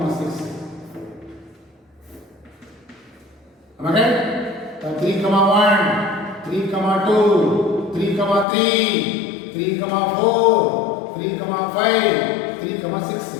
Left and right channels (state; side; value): drops out; right; at 8.5 s